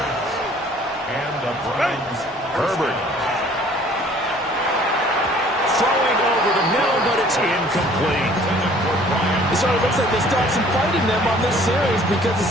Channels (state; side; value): normal; both; correlation 0.55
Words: And the Browns Herbert. Throwing over the middle, but it's incomplete. It sort of looks like they still have some fight in them on this series because it